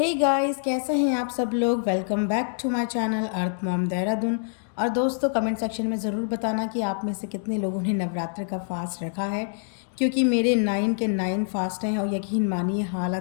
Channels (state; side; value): silent; right; digital silence